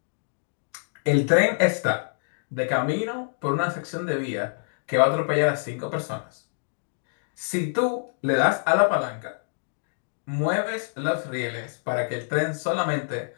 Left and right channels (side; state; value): right; silent; digital silence